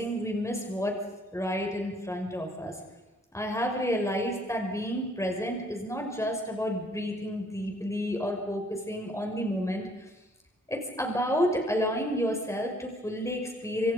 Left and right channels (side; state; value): both; normal; correlation 0.63